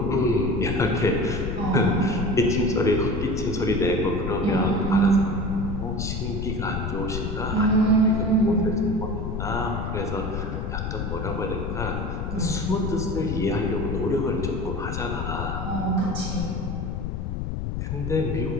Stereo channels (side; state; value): left; noise; rumble, 3 dB below the sound